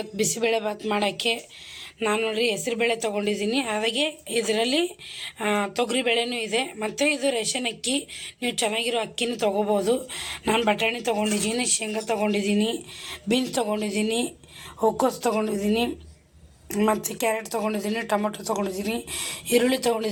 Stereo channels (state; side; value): identical; both; correlation 1.00